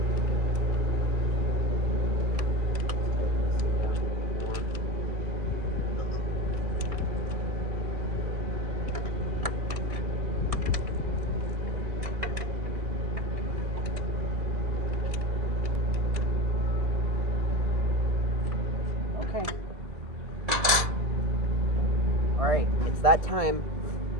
Tighten this thing down a little bit more. Okay. Alright, it's that time.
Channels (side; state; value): left; late; 2.2 ms